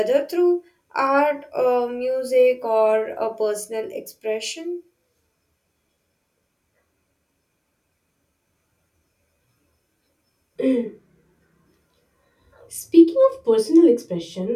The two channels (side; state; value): both; identical; correlation 1.00